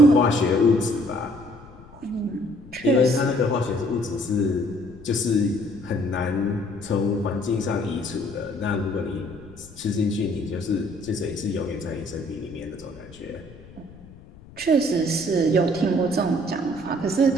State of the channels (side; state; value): left; noise; rumble, 21 dB below the sound